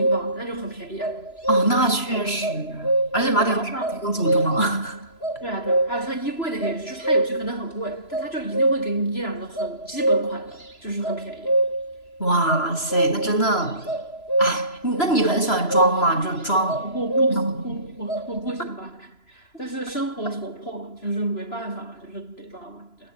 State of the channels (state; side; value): late; right; 3.0 ms